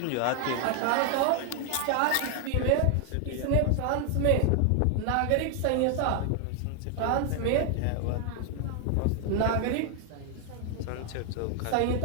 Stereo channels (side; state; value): both; different; correlation 0.00